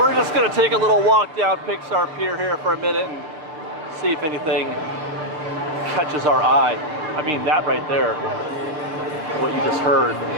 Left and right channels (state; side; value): late; left; 6.5 ms